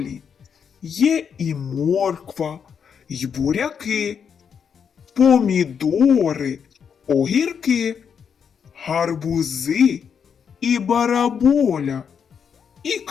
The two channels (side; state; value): right; quieter; 7.1 dB